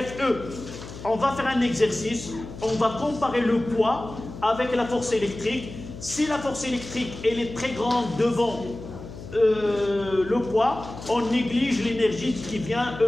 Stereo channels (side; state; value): left; noise; hum, 13 dB below the sound